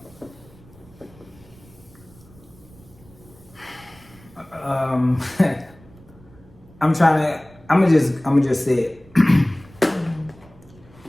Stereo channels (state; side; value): noise; right; rumble, 24 dB below the sound